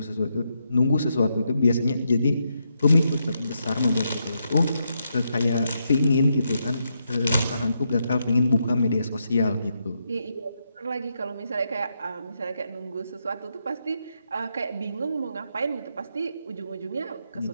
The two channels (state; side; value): inverted; both; correlation -0.81